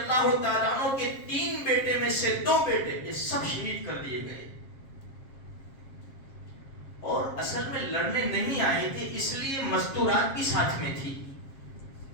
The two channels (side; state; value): right; late; 7.4 ms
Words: تعالیٰ عنہ کے 3 بیٹے میں سے 2 بیٹے، یہ سب شہید کر دیے گئے۔ اور اصل میں لڑنے نہیں آئے تھے، اس لیے مستورات بھی ساتھ میں تھی۔